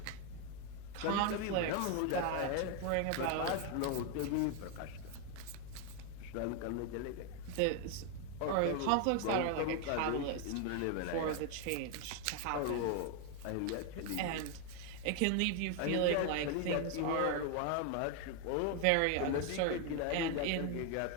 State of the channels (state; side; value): different; both; correlation 0.01